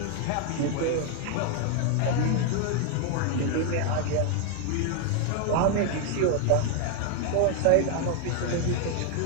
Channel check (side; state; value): both; different; correlation 0.01